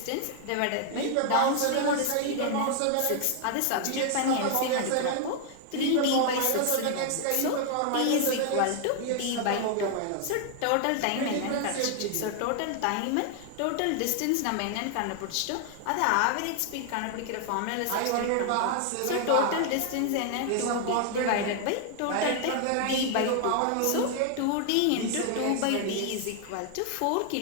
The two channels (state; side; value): different; both; correlation 0.00